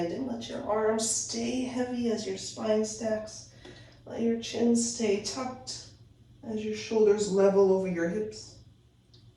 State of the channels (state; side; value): identical; both; correlation 1.00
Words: Let your arms stay heavy as your spine stacks. Let your chin stay tucked as your shoulders level over your hips.